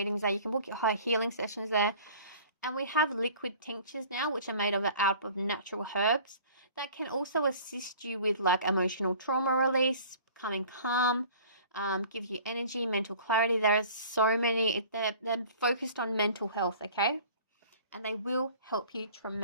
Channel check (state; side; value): inverted; both; correlation -0.47